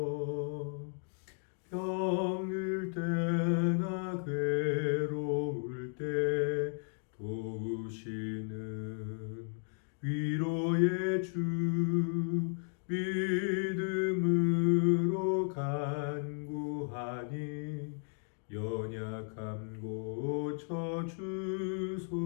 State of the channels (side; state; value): right; silent; 55 dB below the other